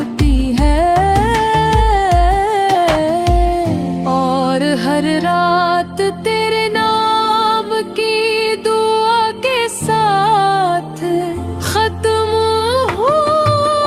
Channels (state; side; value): identical; both; correlation 1.00